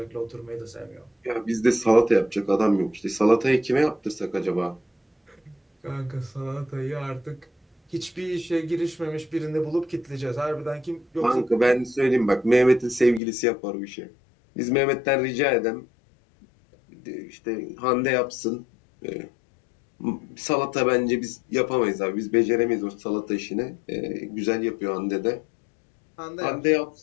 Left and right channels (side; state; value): right; drops out; at 13.2 s